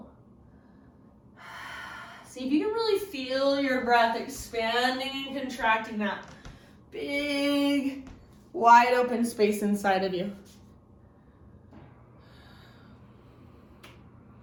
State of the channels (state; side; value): identical; both; correlation 1.00